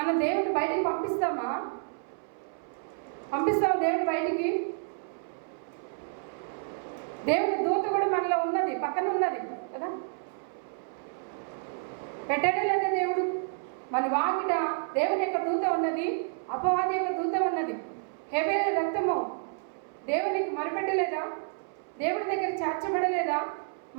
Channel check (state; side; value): silent; left; 58 dB below the other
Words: దేవుడిని బయటికి పంపిస్తామా? దేవుడి బయటికి? దేవుని దూత కూడా మనలో ఉన్నది, పక్కన ఉన్నది కదా. పెట్టడే లేదా దేవుడు? మన వాకిట దేవుని యొక్క దూత ఉన్నది, అపవాది యొక్క దూత ఉన్నది. హేబేలు రక్తము దేవునికి మొరపెట్టలేదా? దేవుడి దగ్గర చేర్చబడలేదా?